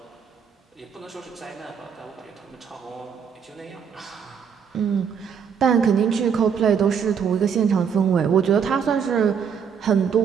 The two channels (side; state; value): left; quieter; 7.1 dB